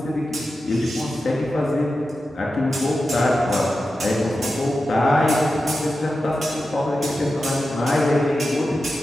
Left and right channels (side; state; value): both; normal; correlation 0.91